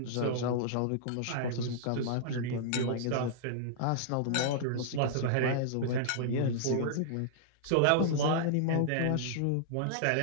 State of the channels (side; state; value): both; different; correlation -0.01